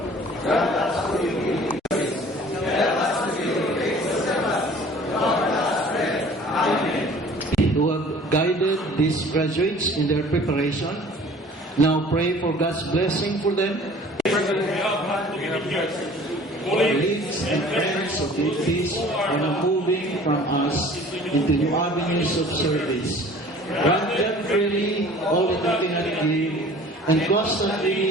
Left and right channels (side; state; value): both; normal; correlation 0.48